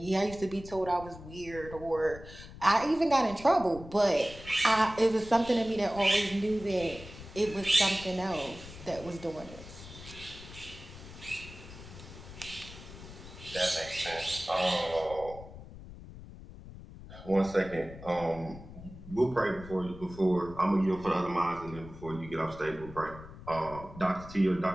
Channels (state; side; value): noise; left; rumble, 15 dB below the sound